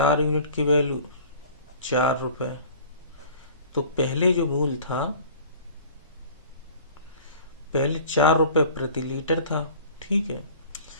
यूनिट की वैल्यू 4 रुपए। तो पहले जो मूल था, पहले 4 रुपए प्रति लीटर था, ठीक है।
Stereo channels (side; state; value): both; inverted; correlation -0.45